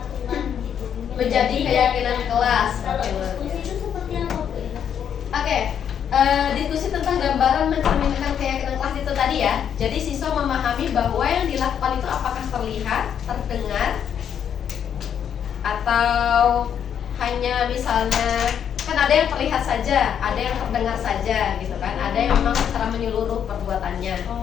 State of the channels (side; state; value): right; quieter; 8.6 dB